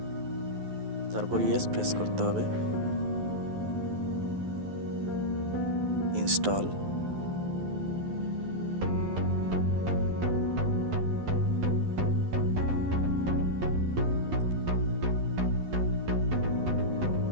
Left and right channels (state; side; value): late; left; 11 ms